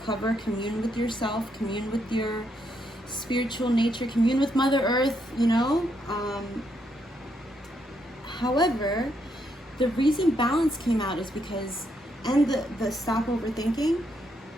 commune with yourself, commune with your spiritual nature, commune with Mother Earth, you know? However, the reason balance came out is because, and the stop overthinking,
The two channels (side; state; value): both; normal; correlation 0.77